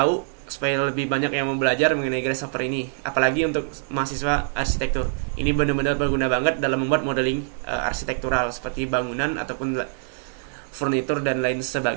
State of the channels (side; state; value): left; silent; 61 dB below the other